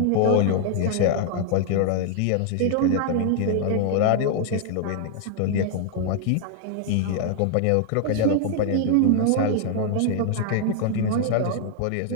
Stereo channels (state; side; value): different; both; correlation 0.00